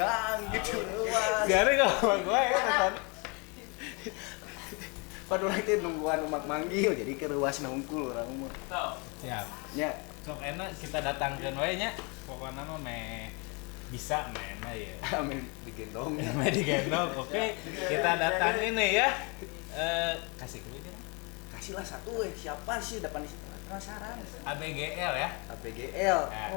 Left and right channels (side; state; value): right; quieter; 31.5 dB